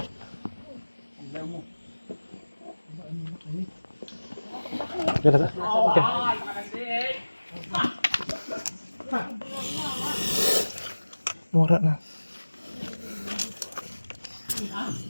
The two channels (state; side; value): inverted; both; correlation -1.00